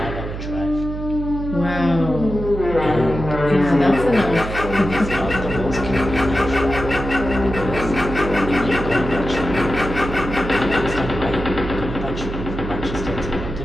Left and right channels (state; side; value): noise; right; hum, 7 dB below the sound